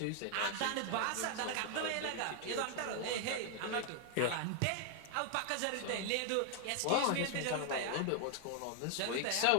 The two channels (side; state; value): both; different; correlation 0.00